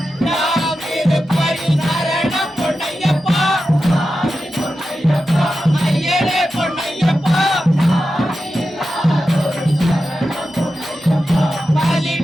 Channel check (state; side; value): normal; both; correlation 0.91